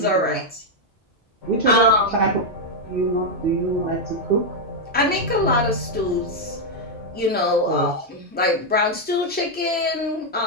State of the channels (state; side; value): normal; both; correlation 0.01